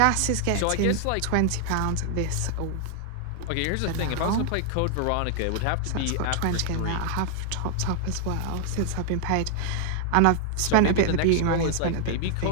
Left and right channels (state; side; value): different; both; correlation 0.00